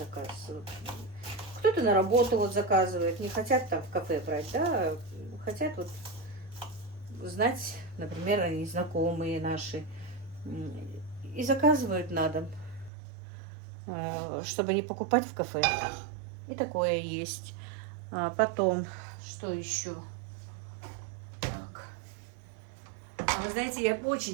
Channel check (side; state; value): left; drops out; at 12.9 s